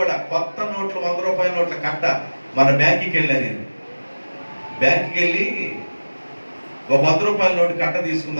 కొత్త నోట్లు 100 రూపాయల నోట్ల కట్ట మన బ్యాంకుకి వెళ్ళాను. నేను బ్యాంకుకి వెళ్ళి ఒక 100 రూపాయల నోటు కట్ట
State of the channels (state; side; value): inverted; both; correlation -1.00